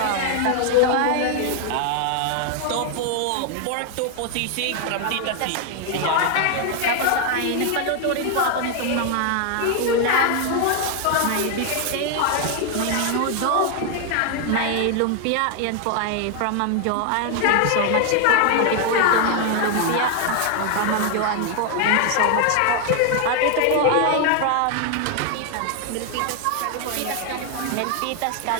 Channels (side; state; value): both; different; correlation 0.00